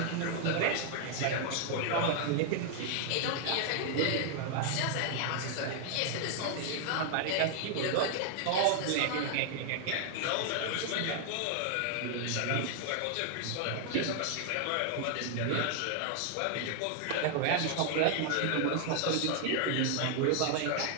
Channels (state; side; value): different; both; correlation 0.00